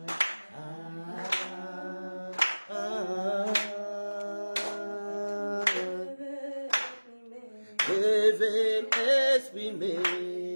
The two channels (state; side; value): inverted; both; correlation -1.00